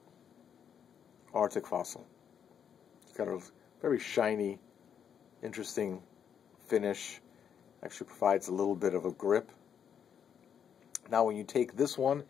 Arctic Fossil. It's got a very shiny, interesting finish. Actually provides a little bit of a grip. Now when you take this one,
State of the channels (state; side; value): quieter; right; 8.1 dB